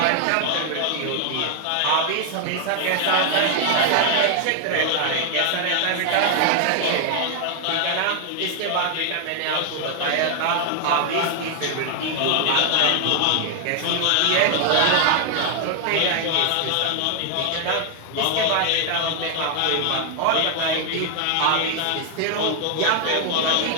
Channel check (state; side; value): different; both; correlation 0.00